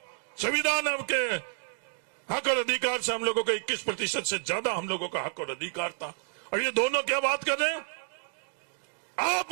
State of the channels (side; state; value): left; silent; digital silence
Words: संविधान के हक और अधिकार से हम लोगों का 21% से ज्यादा हम लोगों का हक और अधिकार था। और ये दोनों क्या बात कर रहे हैं? आप